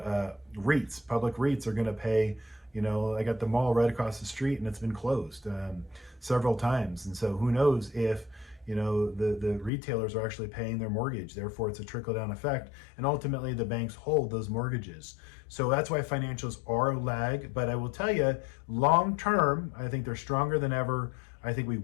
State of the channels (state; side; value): drops out; right; at 9.7 s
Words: public REITs are going to pay. I got the mall right across the street and it's been closed several times, and so who knows if the retailers are actually paying their mortgage. Therefore, it's a trickle-down effect, and ultimately the banks hold those mortgages. So that's why financials are a lag. But I will tell you, long-term, I think they're stronger than ever. I think we